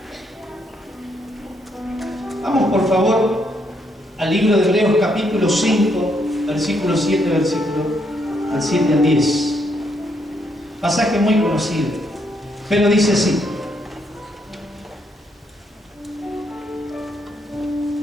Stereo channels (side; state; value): both; normal; correlation 0.74